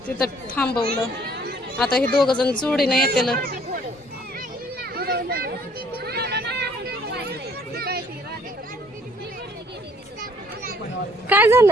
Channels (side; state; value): both; normal; correlation 0.61